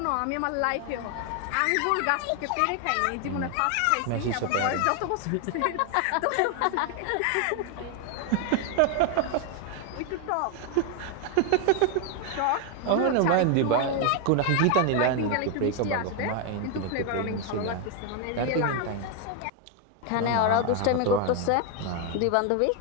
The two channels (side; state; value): both; different; correlation 0.01